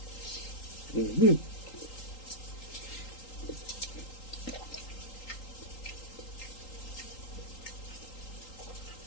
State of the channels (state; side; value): late; right; 3.8 ms